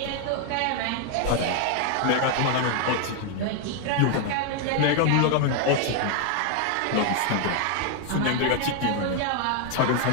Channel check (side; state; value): both; different; correlation 0.01